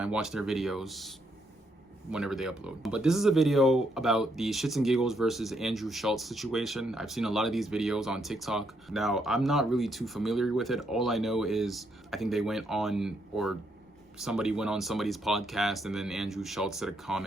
watch their videos whenever they upload. But this is a video about the ShxtsnGigs versus Andrew Schulz situation. I've seen a lot of these videos on TikTok. Now, I'm not really too familiar with it. All I know is I think they went on, or somebody went on somebody's podcast, and then Andrew Schulz said a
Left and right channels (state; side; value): normal; both; correlation 0.76